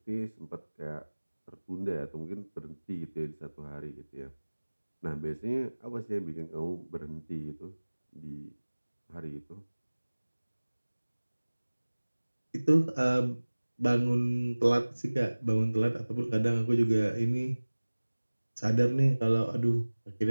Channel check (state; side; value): inverted; both; correlation -1.00